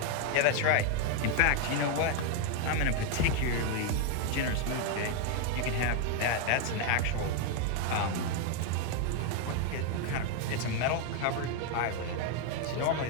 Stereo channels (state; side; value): different; both; correlation 0.01